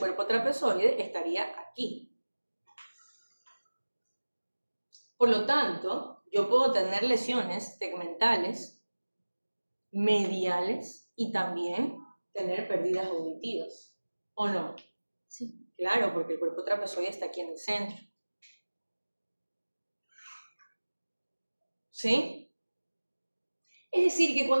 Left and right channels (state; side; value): inverted; both; correlation -1.00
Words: trapezoide estaría aquí. Por lo tanto, yo puedo tener lesiones tegmentales, mediales y también tener pérdidas auditivas, ¿o no? Sí. Claro, porque el cuerpo trapezoide está aquí en el centro. ¿Sí? Es decir, que